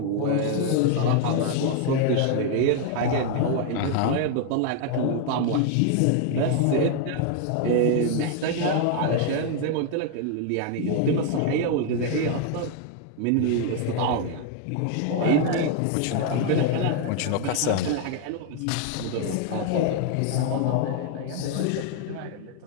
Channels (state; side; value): different; both; correlation 0.00